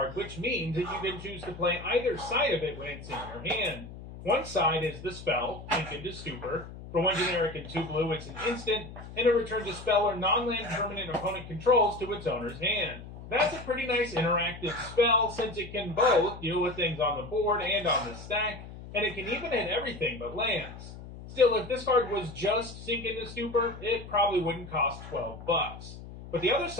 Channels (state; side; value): noise; left; hum, 13 dB below the sound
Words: which means that you can choose to play either side of it when it's in your hand. One side is the spell, Sink into Stupor. For 1 generic and 2 blue, it's an instant, and it returns a spell or non-land permanent opponent controls to its owner's hand. That's a pretty nice interactive spell, since it can both deal with things on the board and on the stack, and it can even hit everything but lands. Still, if this card was just Sink into Stupor, it probably wouldn't cost $12. But the other